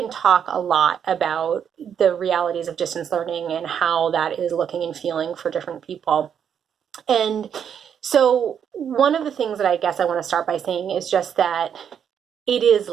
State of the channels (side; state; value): left; quieter; 8.2 dB